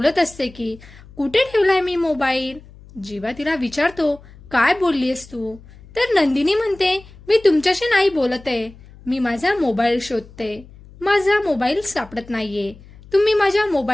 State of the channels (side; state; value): left; noise; hum, 22 dB below the sound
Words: असते की कुठे ठेवलाय मी मोबाईल. जीवा तिला विचारतो, काय बोललीस तू? तर नंदिनी म्हणते, मी तुमच्याशी नाही बोलत आहे, मी माझा मोबाईल शोधते. माझा मोबाईल सापडत नाहीये. तुम्ही माझ्या